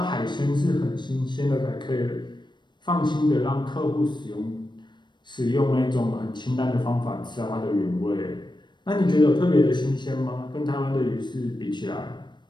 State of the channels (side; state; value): right; late; 0.22 ms